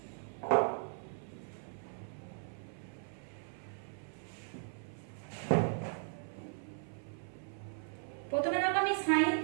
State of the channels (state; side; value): silent; left; 53 dB below the other